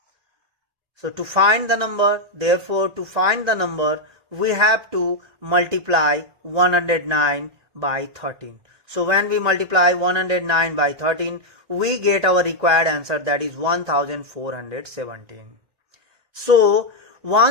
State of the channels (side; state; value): left; late; 1.9 ms